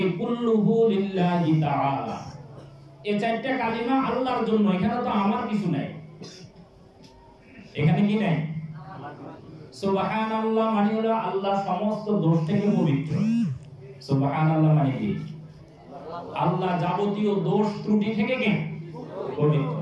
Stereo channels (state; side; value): identical; both; correlation 1.00